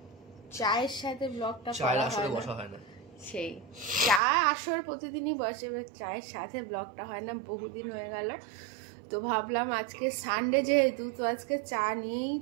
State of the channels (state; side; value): drops out; left; at 4.2 s